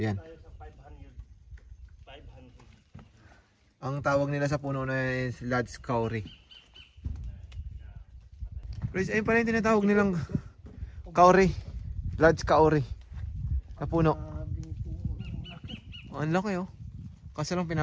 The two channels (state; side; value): identical; both; correlation 1.00